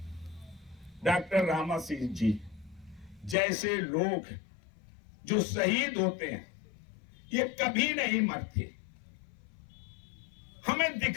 डॉक्टर रामा सिंह जी जैसे लोग जो शहीद होते हैं, ये कभी नहीं मरते, हमें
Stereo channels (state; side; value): drops out; right; at 3.4 s